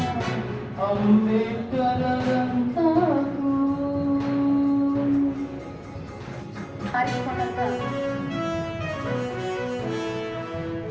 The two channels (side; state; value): both; identical; correlation 1.00